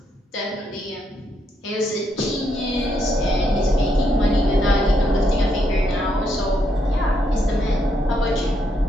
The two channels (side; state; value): both; normal; correlation 0.77